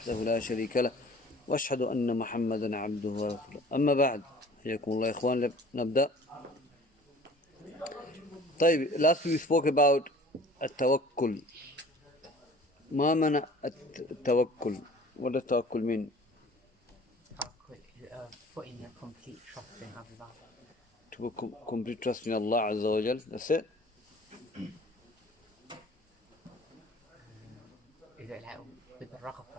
لا شريك له وأشهد أن محمدا عبده ورسوله أما بعد حياكم الله يا إخوان نبدأ. طيب, last we spoke about التوكل. ما معنى التوكل? What does التوكل mean? Putting a complete trust in Allah. To put complete trust in Allah Azza wa Jal. That's it. Is it like with the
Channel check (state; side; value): normal; both; correlation 0.47